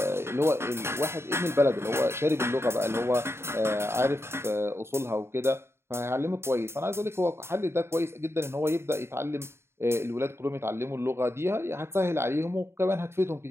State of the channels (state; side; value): late; left; 0.12 ms